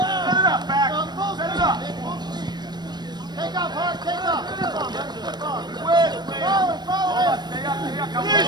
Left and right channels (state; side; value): late; left; 0.21 ms